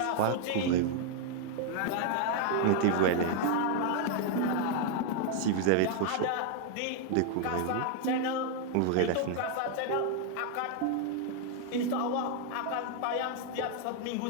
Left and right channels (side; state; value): both; different; correlation 0.00